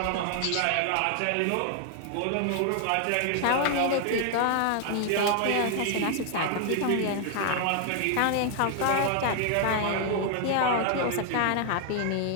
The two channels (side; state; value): both; different; correlation 0.00